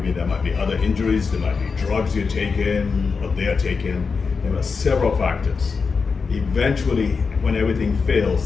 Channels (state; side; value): quieter; right; 5.0 dB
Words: there might be other injuries, there might be drugs you're taking or they're taking. There are several factors. Eventually, when everything